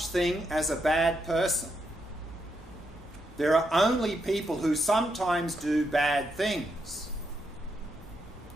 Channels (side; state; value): both; normal; correlation 0.81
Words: thing as a bad person. There are only people who sometimes do bad things.